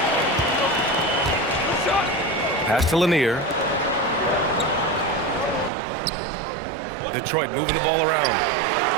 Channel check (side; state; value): left; drops out; at 5.7 s